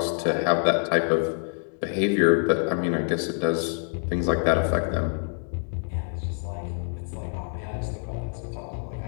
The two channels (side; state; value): right; silent; 57 dB below the other